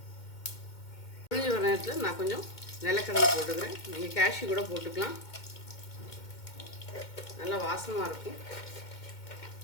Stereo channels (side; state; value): right; late; 2.2 ms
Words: பொரிஞ்சு வர நேரத்தில் நான் கொஞ்சம் நிலக்கடலை போட்டுக்கிறேன். நீங்கள் கேஷ்யூ கூட போட்டுக்கலாம், நல்லா வாசமாக இருக்கும்.